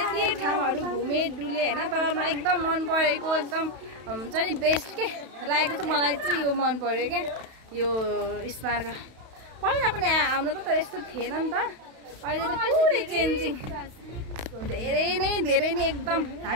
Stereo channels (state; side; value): late; left; 31 ms